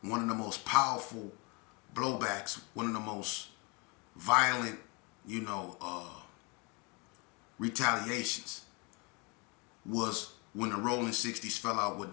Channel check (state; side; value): quieter; right; 30.3 dB